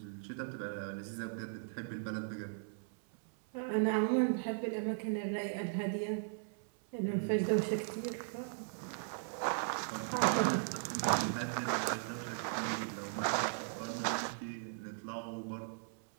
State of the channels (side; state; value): left; silent; 53 dB below the other